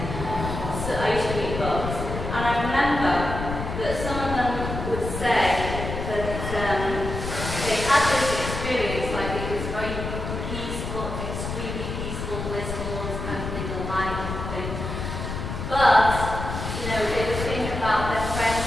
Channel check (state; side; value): noise; left; rumble, 5 dB below the sound